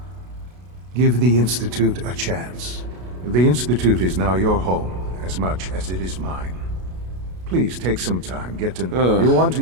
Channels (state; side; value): late; left; 33 ms